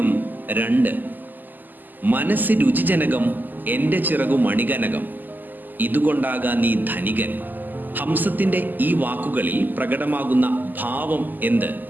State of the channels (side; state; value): left; late; 0.087 ms